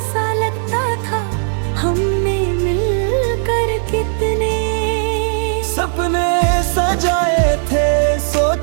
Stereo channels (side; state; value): left; silent; 61 dB below the other